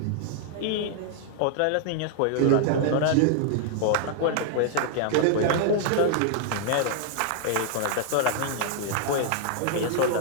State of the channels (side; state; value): both; different; correlation -0.01